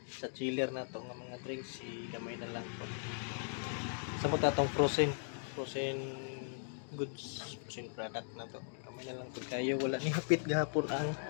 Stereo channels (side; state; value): right; silent; digital silence